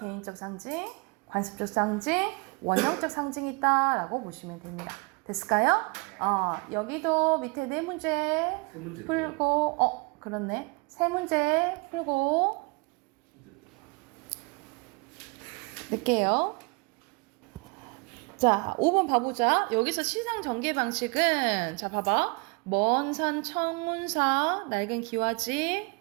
상징, 관습적 상징, 원형적 상징이 있다라고 보시면 됩니다. 됐을까요? 여기도 밑에 네 문제 풀고, 그렇네. 세 문제 풀고 낼게요. 자, 5번 봐보자. 여기서 시상 전개 방식은, 자, 봐봐. 먼 산 청운사, 낡은 기와집,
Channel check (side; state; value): left; quieter; 30.8 dB